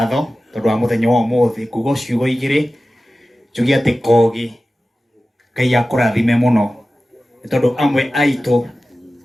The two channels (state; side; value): normal; both; correlation 0.95